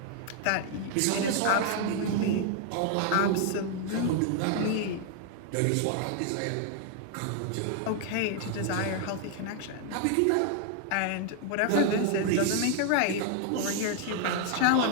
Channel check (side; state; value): both; different; correlation 0.00